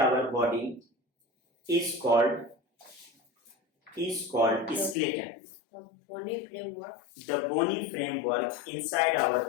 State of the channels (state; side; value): drops out; right; at 5.0 s